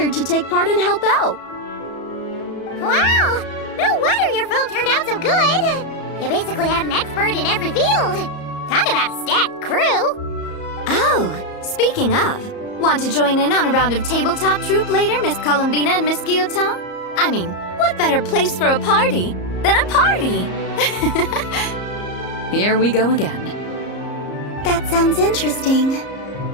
to take part and help out. Wow! No wonder your film turned out so good. You basically had an expert in every field. Talk about a stacked crew. Oh, speaking of, want to join in on a round of tabletop troupe later, Miss Columbina and Miss Guillotin? I mean, what better place for a party than a party? Here we go again. That sounds interesting.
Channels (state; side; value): late; right; 34 ms